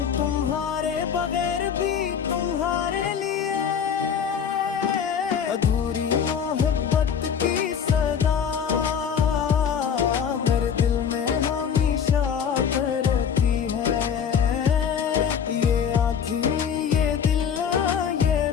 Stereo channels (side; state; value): right; quieter; 7.5 dB